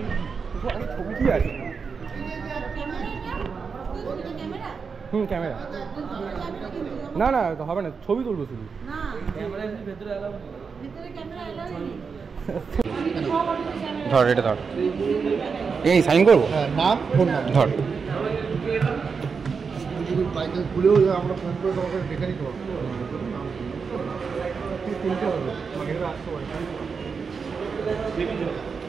কি আছে? ক্যামেরা না না হবে না, ছবি তুলবো শুধু। ধর এটা ধর, এই সাইন করবো, নাম ফোন নাম্বার ধর। যদি বাইকেল খুলেও আমরা ফোন করে তোমাকে দেখে নিতে পারবো।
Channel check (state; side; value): quieter; left; 5.5 dB